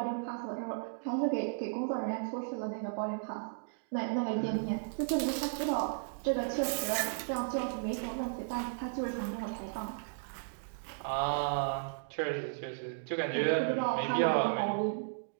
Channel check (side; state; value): left; silent; digital silence